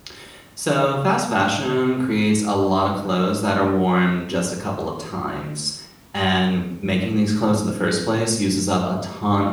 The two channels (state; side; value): identical; both; correlation 1.00